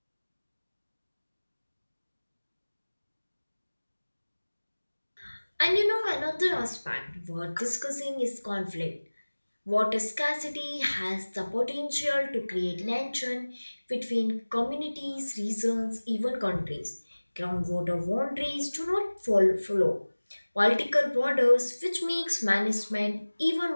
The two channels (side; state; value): both; inverted; correlation -1.00